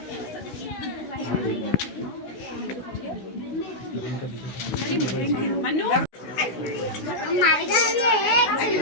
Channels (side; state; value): right; late; 16 ms